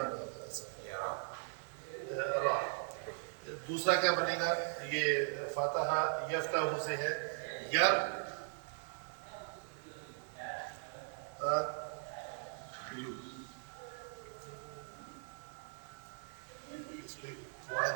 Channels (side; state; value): left; silent; digital silence